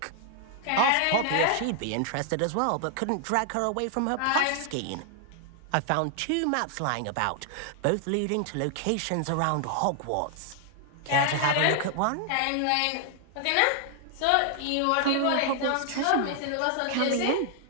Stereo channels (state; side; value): different; both; correlation 0.00